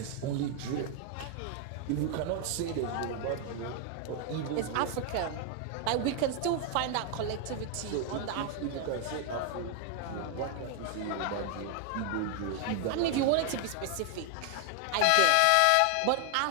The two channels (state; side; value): different; both; correlation 0.00